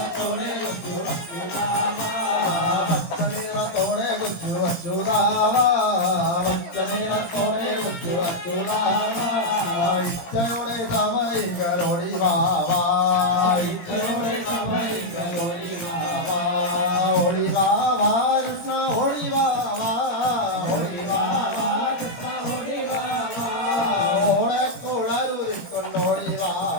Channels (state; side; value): late; right; 17 ms